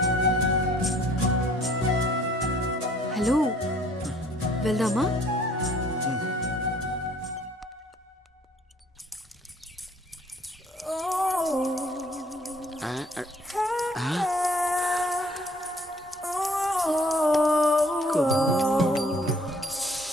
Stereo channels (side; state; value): both; normal; correlation 0.59